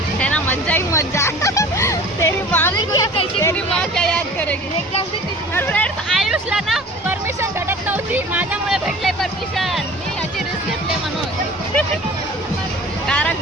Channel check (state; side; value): normal; both; correlation 0.43